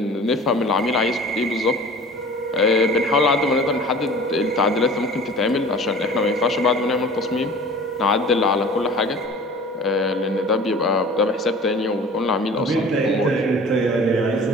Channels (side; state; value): both; normal; correlation 0.43